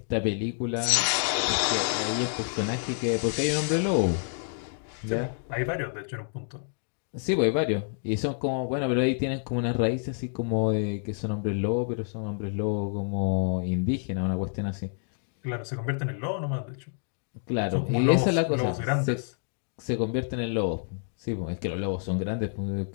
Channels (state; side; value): silent; right; digital silence